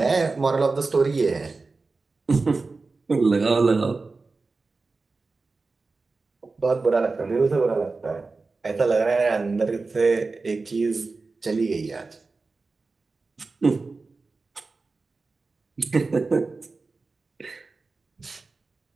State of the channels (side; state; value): left; quieter; 3.9 dB